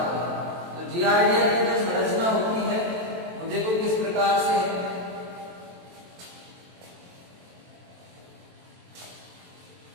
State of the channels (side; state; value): left; late; 23 ms